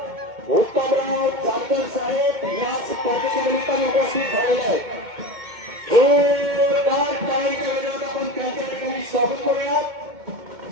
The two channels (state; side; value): late; left; 2.2 ms